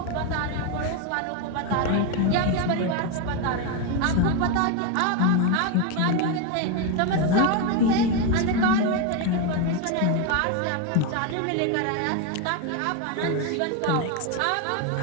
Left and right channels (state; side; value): different; both; correlation 0.02